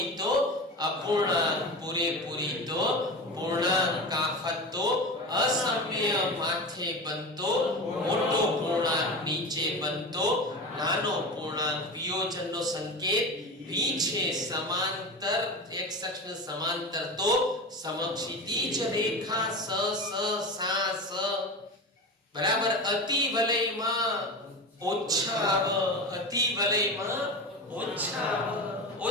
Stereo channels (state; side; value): normal; both; correlation 0.27